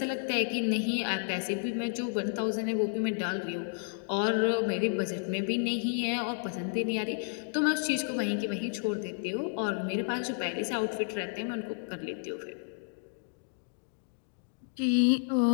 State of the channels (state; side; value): silent; right; digital silence